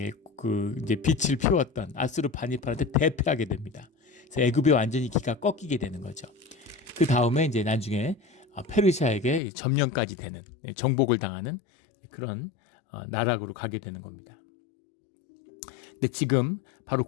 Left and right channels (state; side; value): drops out; right; at 9.4 s